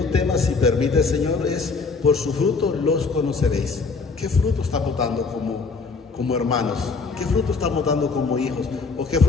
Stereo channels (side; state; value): right; quieter; 4.4 dB